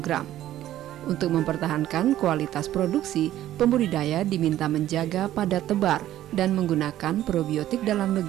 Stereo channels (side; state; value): left; quieter; 13.1 dB